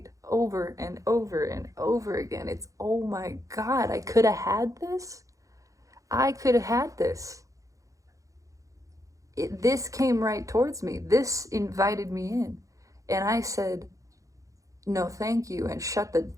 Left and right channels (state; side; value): late; left; 0.16 ms